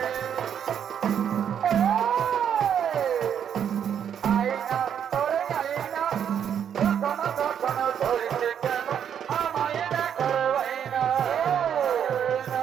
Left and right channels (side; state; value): left; quieter; 8.6 dB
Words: আইনা তোরে আইনা কখনো কখনো ধরছে কেন আমায় দেখার বাইনা